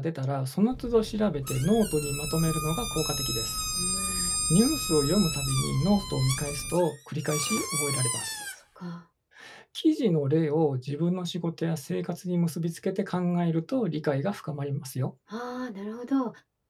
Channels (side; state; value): both; identical; correlation 1.00